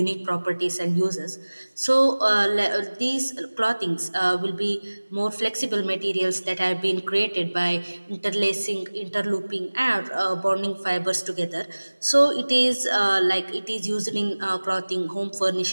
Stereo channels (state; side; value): inverted; both; correlation -1.00